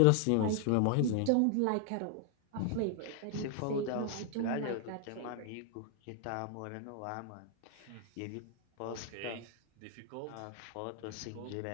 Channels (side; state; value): both; different; correlation 0.00